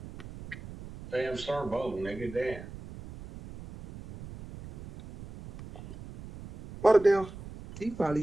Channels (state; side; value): noise; right; rumble, 14 dB below the sound